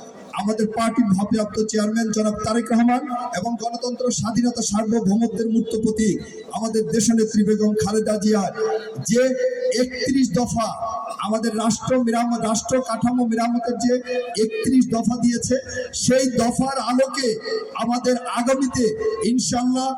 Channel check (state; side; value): identical; both; correlation 1.00